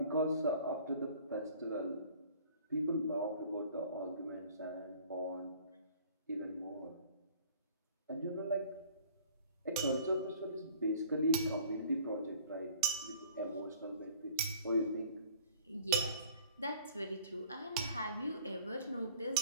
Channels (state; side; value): inverted; both; correlation -0.51